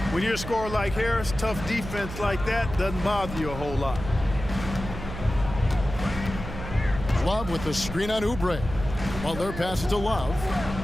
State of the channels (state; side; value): noise; right; hum, 9 dB below the sound